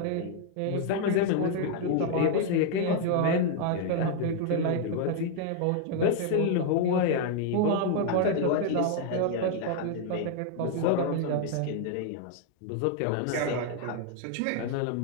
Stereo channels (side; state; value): both; different; correlation 0.00